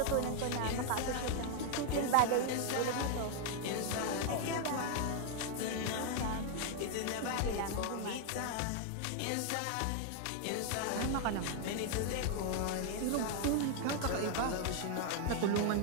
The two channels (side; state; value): both; different; correlation 0.00